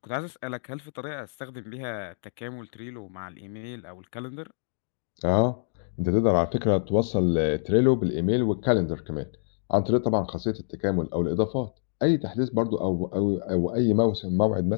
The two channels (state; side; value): silent; right; digital silence